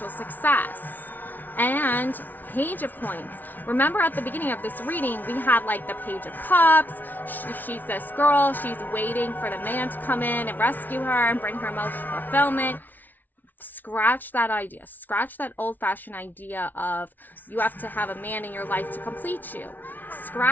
success. And Page of Coins. Remember, at the beginning of this reading, we had like the Page of Cups. She's this girl, she's waiting for the man to come in and rescue her and bring her emotional fulfillment. Scratch that idea. Scratch that old-fashioned idea of you have to have a man in your life to complete you.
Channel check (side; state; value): right; late; 0.084 ms